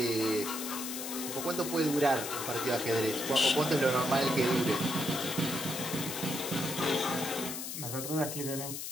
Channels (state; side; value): noise; left; hiss, 6 dB below the sound